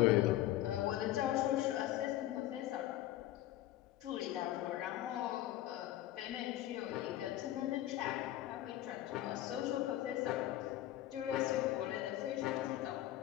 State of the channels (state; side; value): quieter; right; 14.2 dB